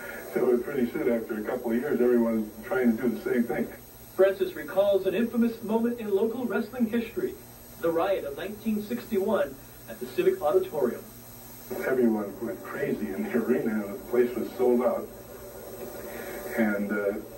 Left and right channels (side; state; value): both; identical; correlation 1.00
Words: So pretty soon, after a couple of years, everyone was trying to do the same thing. Francis recalls an infamous moment in local wrestling history, the riot of 1961 at the Civic Auditorium. Everyone went crazy in the arena and the place was sold out. And